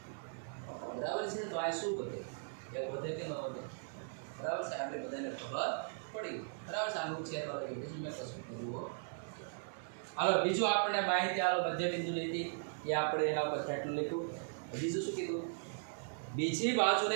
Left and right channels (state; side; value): silent; left; digital silence